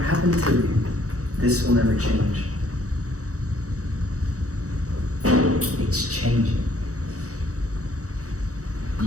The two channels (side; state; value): left; late; 0.66 ms